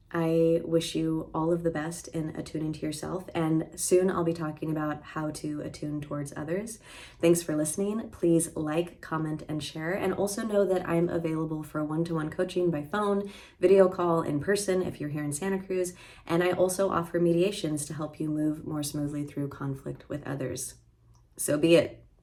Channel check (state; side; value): identical; both; correlation 1.00